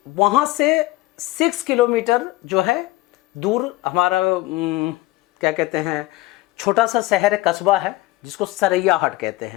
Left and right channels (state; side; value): quieter; right; 19.0 dB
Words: वहाँ से 6 किलोमीटर जो है दूर हमारा क्या कहते हैं, छोटा सा शहर है, कस्बा है, जिसको सरैयाहाट कहते